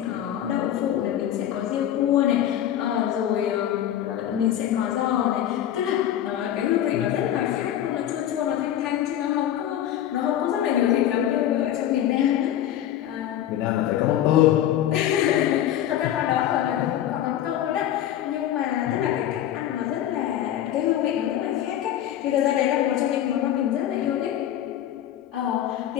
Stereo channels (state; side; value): quieter; right; 11.4 dB